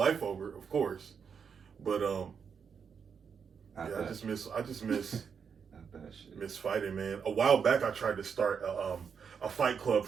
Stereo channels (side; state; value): left; quieter; 6.6 dB